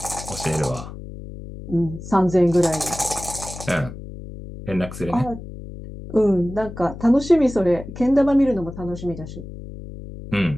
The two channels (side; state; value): left; noise; hum, 12 dB below the sound